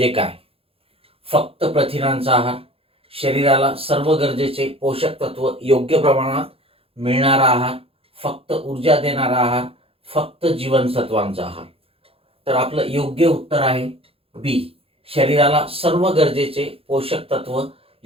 काय? फक्त प्रथिनांचा आहार, शरीराला सर्व गरजेचे पोषक तत्व योग्य प्रमाणात मिळणारा आहार, फक्त ऊर्जा देणारा आहार, फक्त जीवनसत्वांचा आहार. तर आपलं योग्य उत्तर आहे बी. शरीराला सर्व गरजेचे पोषक तत्व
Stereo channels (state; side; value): late; left; 0.27 ms